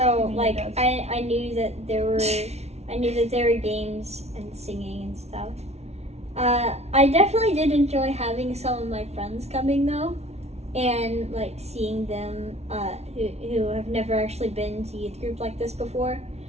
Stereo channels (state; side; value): late; left; 0.31 ms